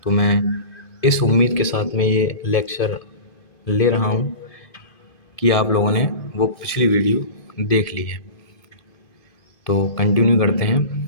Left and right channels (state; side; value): late; right; 2.5 ms